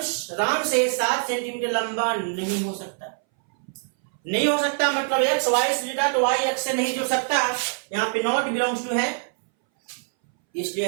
राम से 7 सेंटीमीटर लंबा नहीं हो सकता। नहीं हो सकता मतलब एक्स वाई से जुड़ा तो वाई एक्स से नहीं जुड़ सकता। यहाँ पे नॉट बिलोंग्स टू है,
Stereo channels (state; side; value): silent; left; 61 dB below the other